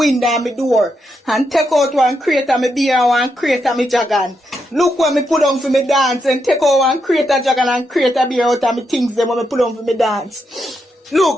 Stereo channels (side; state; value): both; normal; correlation 0.82